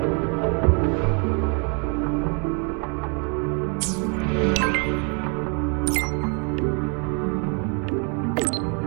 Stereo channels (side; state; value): left; quieter; 36.4 dB